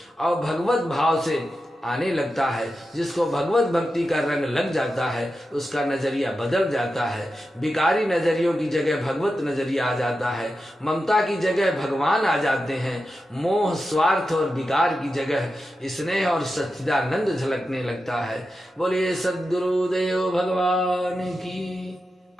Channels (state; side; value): normal; both; correlation 0.90